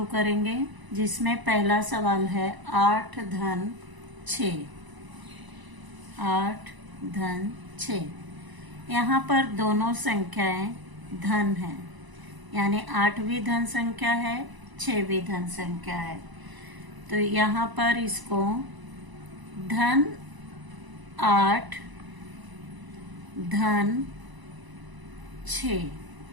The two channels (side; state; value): left; late; 1.0 ms